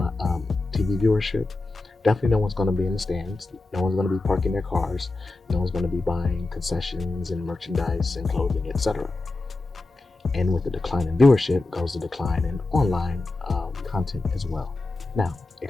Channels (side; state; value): right; quieter; 3.1 dB